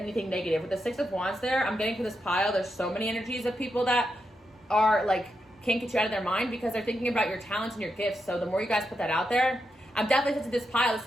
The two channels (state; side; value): normal; both; correlation 0.85